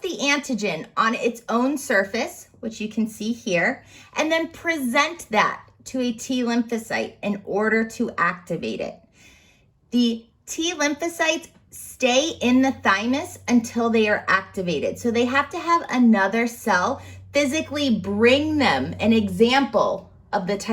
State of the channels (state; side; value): identical; both; correlation 1.00